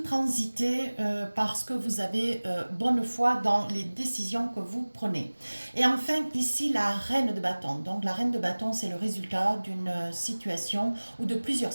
transitez parce que vous avez bonne foi dans les décisions que vous prenez. Et enfin, ici, la reine de bâton. Donc la reine de bâton, c'est le résultat d'une situation ou de plusieurs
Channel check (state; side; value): inverted; both; correlation -1.00